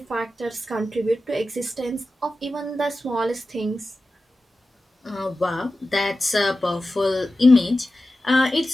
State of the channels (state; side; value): normal; both; correlation 0.94